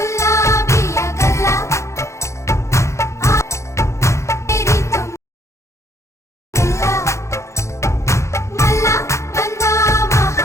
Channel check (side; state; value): right; late; 0.14 ms